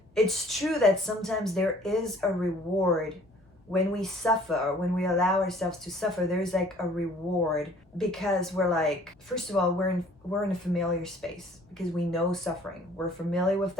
it's true that sometimes there is a reward when we suffer, when we allow ourselves to suffer. There's like a reward because we're like, first of all, we're in a familiar space because we know suffering. We're familiar with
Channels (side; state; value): both; normal; correlation 0.54